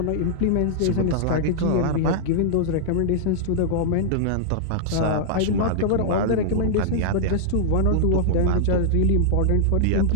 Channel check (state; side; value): different; both; correlation -0.01